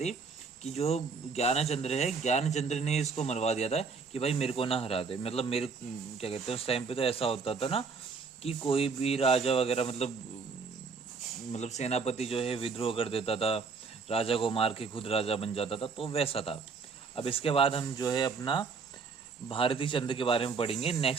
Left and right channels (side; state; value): left; quieter; 5.0 dB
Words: कि जो ज्ञानचंद्र ने इसको मरवा दिया था कि भाई मेरे को ना हरा दे। मतलब मेरे क्या कहते हैं, उस टाइम पे तो ऐसा होता था ना कि कोई भी राजा वगैरह मतलब सेनापति जो है विद्रोह कर देता था, राजा को मार के खुद राजा बन जाता था, तो वैसा था। अब इसके बाद हम जो है अपना भारती चंद्र के बारे में पढ़ेंगे